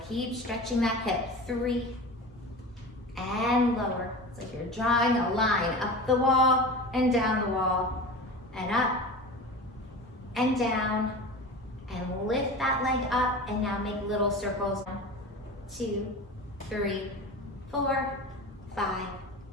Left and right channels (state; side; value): normal; both; correlation 0.32